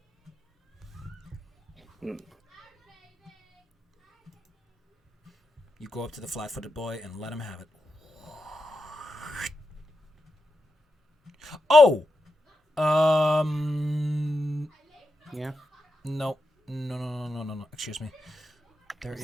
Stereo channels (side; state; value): both; normal; correlation 0.87